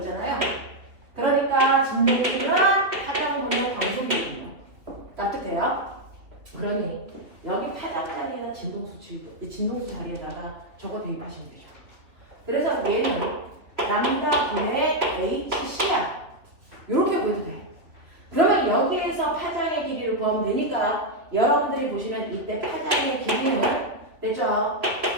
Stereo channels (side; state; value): left; late; 2.9 ms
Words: 그러니까 진동수는 파장분의 광속입니다. 납득돼요? 그러니 여기 파장 자리에다 진동수 자리에다가 저거 대입하시면 되죠. 그래서 얘는 람다분의 HC야. 이렇게 보여도 돼. 그러면 여기에서 파장의 길이를 구하면 되니까 여러분들이 보시는 이때 파장의 길이는 됐죠?